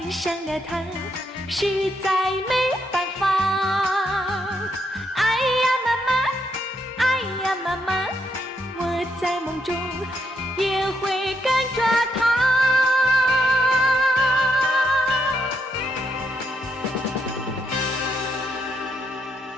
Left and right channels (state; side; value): normal; both; correlation 0.78